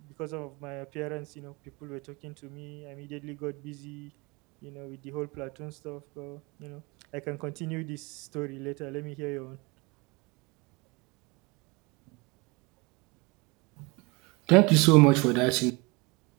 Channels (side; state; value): left; quieter; 26.8 dB